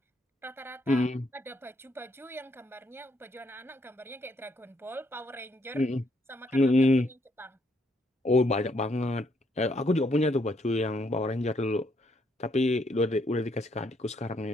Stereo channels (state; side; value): normal; both; correlation 0.72